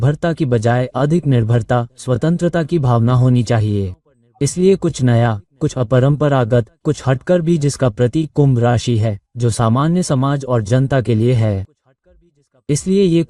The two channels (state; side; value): identical; both; correlation 1.00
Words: की बजाय अधिक निर्भरता, स्वतंत्रता की भावना होनी चाहिए। इसलिए कुछ नया, कुछ अपरंपरागत, कुछ हटकर भी जिसका प्रतीक कुंभ राशि है, जो सामान्य समाज और जनता के लिए है। इसलिए ये